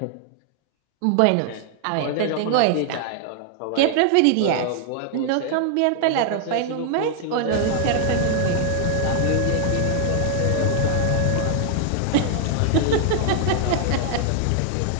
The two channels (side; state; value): both; different; correlation -0.01